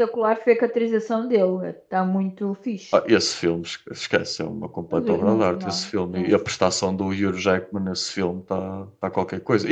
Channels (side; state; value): both; identical; correlation 1.00